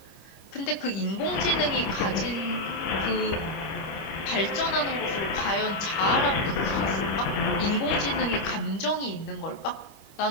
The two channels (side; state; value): right; late; 25 ms